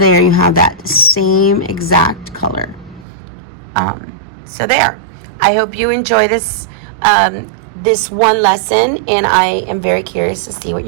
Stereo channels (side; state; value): left; drops out; at 3.1 s